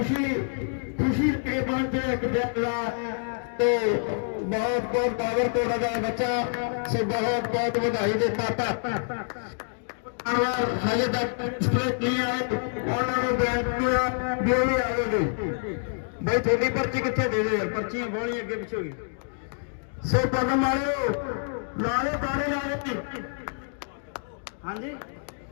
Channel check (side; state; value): right; silent; digital silence